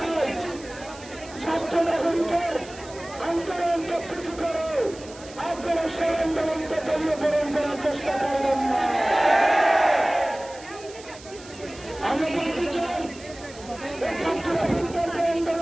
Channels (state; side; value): noise; right; hiss, 19 dB below the sound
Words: ছাত্র নাগরিকের আন্দোলনকে পিছু করে আপনারা সেই আন্দোলনকে দলীয়করণ করার চেষ্টা করবেন না। আমরা বলতে চাই ছাত্র নাগরিকের যে